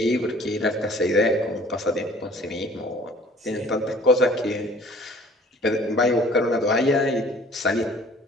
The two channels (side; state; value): both; normal; correlation 0.52